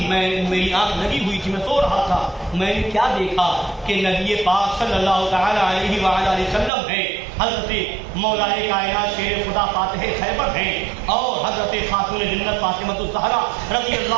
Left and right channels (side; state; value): left; drops out; at 6.7 s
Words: میری آنکھ لگی ہوئی تھی, میں سو رہا تھا, میں نے کیا دیکھا کہ نبی پاک صلی اللہ تعالی علیہ وآلہ وسلم ہیں, حضرت مولائے کائنات شیر خدا فاتح خیبر ہیں, اور حضرت خاتون جنت فاطمہ الزہرا رضی